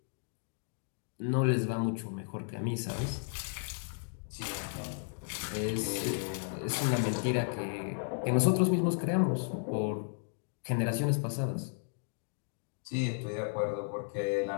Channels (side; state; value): right; silent; digital silence